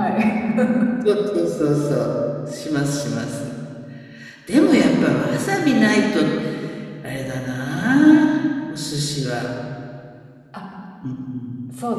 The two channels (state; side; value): identical; both; correlation 1.00